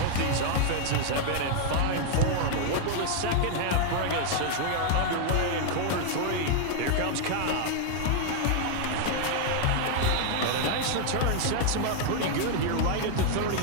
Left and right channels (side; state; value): both; different; correlation 0.00